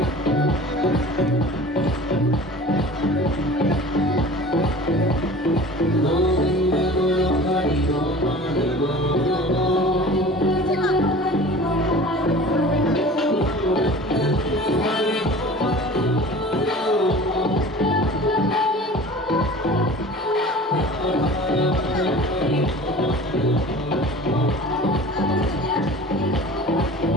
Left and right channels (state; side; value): normal; both; correlation 0.41